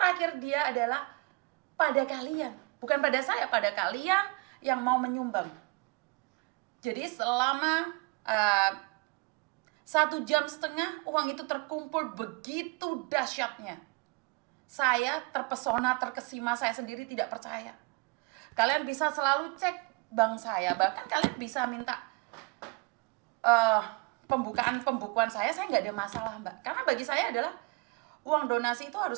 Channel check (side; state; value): left; quieter; 29.4 dB